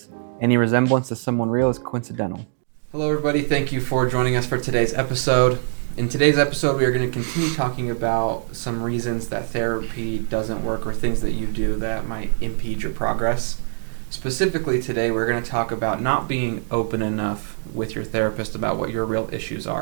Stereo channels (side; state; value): left; silent; digital silence